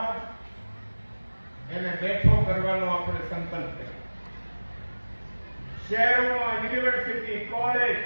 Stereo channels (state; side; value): inverted; both; correlation -1.00